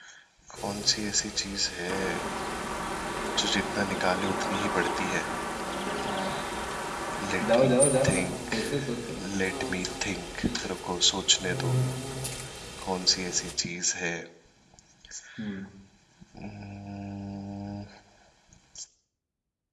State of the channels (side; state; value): both; identical; correlation 1.00